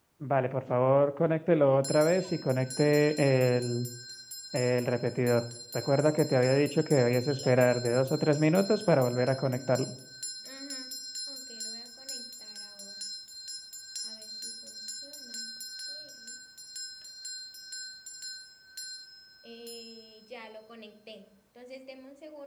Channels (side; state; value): both; identical; correlation 1.00